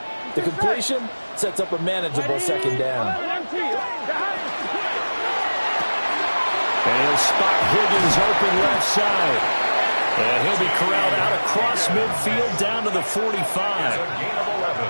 The completion sets up a manageable second down. And he'll spot Higgins open left side. And he'll be corralled out across midfield down to the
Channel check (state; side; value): inverted; both; correlation -1.00